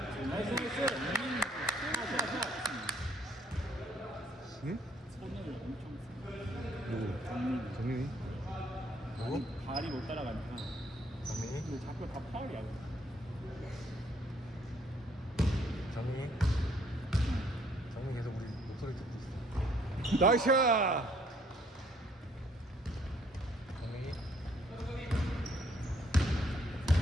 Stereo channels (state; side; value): normal; both; correlation 0.66